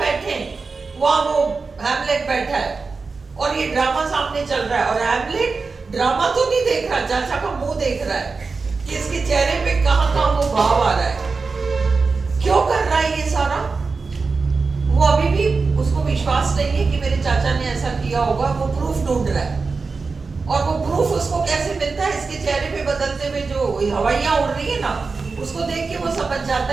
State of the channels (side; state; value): left; quieter; 4.4 dB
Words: हैं वहां, वो हैमलेट बैठा है और ये ड्रामा सामने चल रहा है, और हैमलेट ड्रामा तो नहीं देख रहा, चाचा का मुंह देख रहा है कि इसके चेहरे पे कहां कहां वो भाव आ रहा है। क्यों कर रहा है ये सारा? वो अभी भी उसको विश्वास नहीं है कि मेरे चाचा ने ऐसा किया होगा, वो प्रूफ ढूंढ रहा है। और वो प्रूफ उसको कैसे मिलता है? इसके चेहरे पे बदलते हुए जो हवाइयां उड़ रही है ना, उसको देख के वो समझ जाता